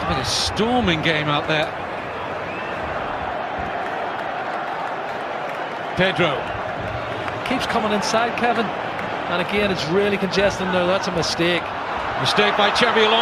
a storming game out there. Pedro. Keeps coming inside, Kevin, and again it's really congested there. That's a mistake. Mistake by Xabi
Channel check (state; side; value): identical; both; correlation 1.00